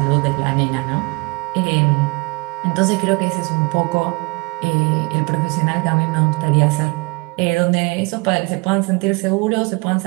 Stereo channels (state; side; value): quieter; left; 27.4 dB